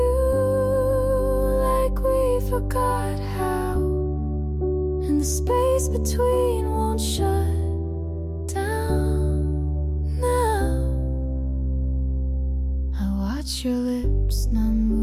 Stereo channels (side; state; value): both; identical; correlation 1.00